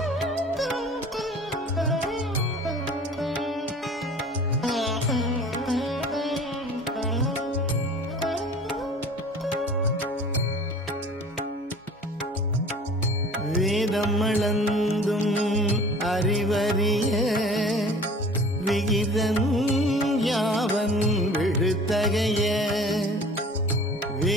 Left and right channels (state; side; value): normal; both; correlation 0.45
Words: வேதம் அளந்தும் அறிவறிய விகிதன் யாவன் விழுத்தகைய